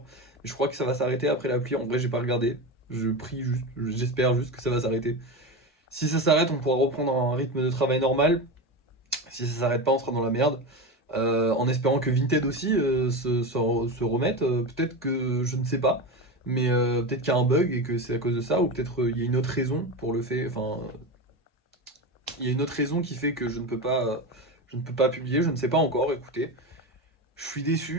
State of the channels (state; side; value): normal; both; correlation 0.21